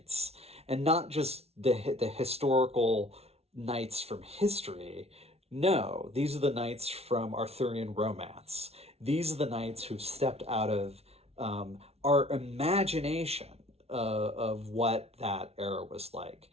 and not just the historical knights from history. No, these are the knights from Arthurian romance. These are the knights who've stepped out of our imagination of what that era was like.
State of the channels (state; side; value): late; left; 0.30 ms